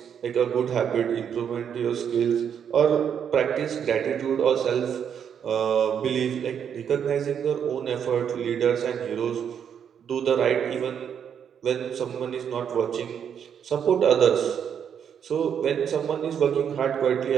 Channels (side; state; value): left; quieter; 8.1 dB